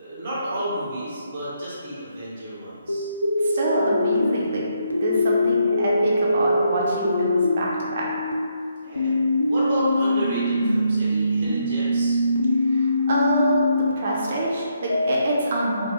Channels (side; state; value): both; inverted; correlation -0.76